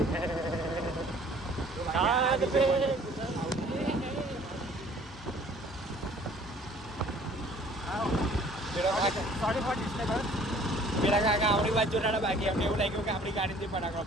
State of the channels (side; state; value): both; normal; correlation 0.54